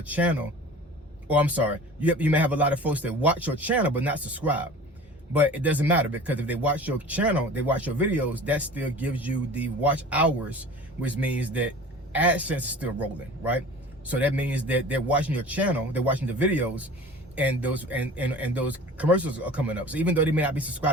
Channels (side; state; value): both; normal; correlation 0.41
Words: channel. Or I'm sorry, you may have a lot of folks that watch your channel but not subscribe. But it doesn't matter, because if they watch your channel, they watch your videos, that still gives you the watch hours, which means that AdSense is still rolling, right? So that means that they're watching your channel, they're watching the videos, and those commercials are coming up. So even though they may not be